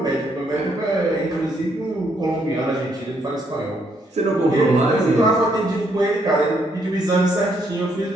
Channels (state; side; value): normal; both; correlation 0.73